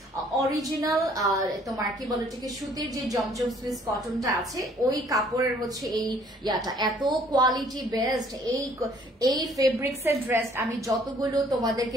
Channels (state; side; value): normal; both; correlation 0.60